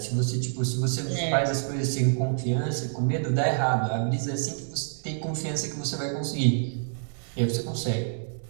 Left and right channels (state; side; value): silent; left; 60 dB below the other